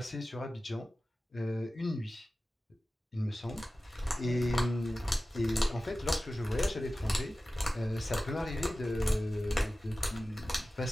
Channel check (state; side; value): normal; both; correlation 0.95